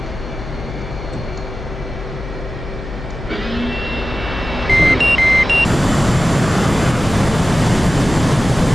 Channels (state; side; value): noise; left; hum, 10 dB below the sound